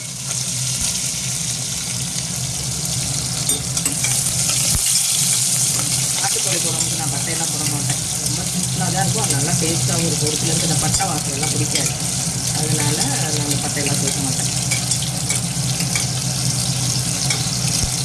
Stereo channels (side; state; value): both; identical; correlation 1.00